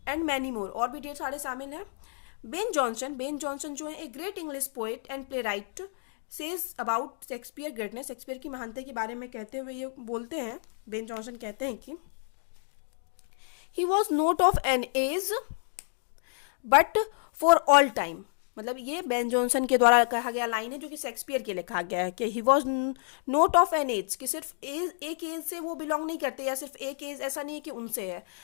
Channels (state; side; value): silent; right; digital silence